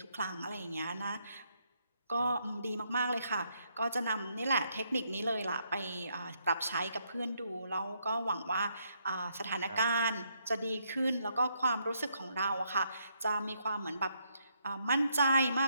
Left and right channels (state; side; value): inverted; both; correlation -0.75